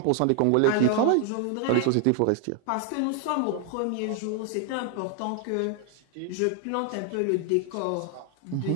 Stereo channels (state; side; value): different; both; correlation 0.00